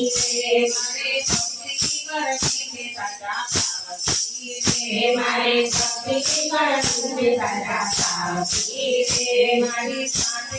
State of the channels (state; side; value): identical; both; correlation 1.00